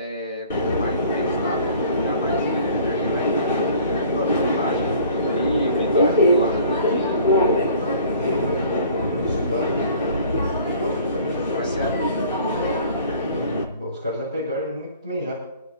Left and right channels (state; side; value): inverted; both; correlation -0.51